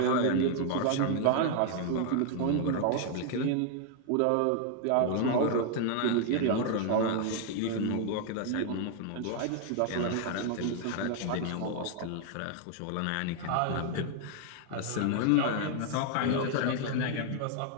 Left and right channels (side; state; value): both; different; correlation 0.00